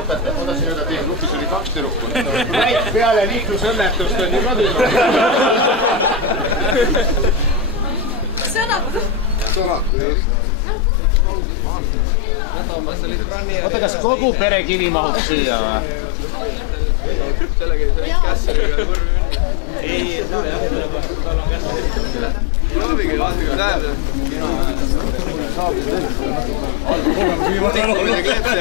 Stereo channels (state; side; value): drops out; right; at 9.9 s